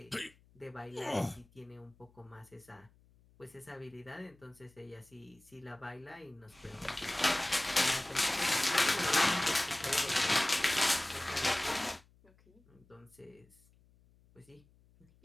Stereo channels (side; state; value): left; noise; hum, 29 dB below the sound